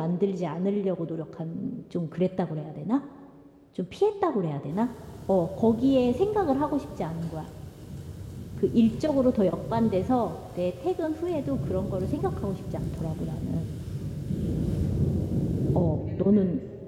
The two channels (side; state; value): both; identical; correlation 1.00